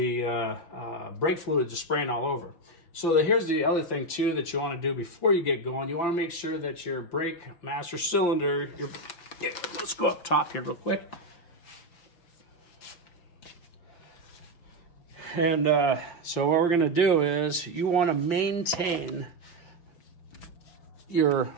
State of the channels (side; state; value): right; late; 5.8 ms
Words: brake fluid is spraying all over. So here's the other thing too that you want to do before you get going. You want to make sure that your brake master cylinder, let's go up top here real quick. And so what we're going to do is you want to maintain your